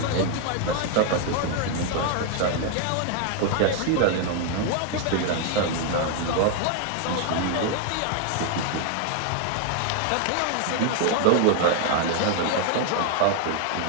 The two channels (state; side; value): different; both; correlation 0.00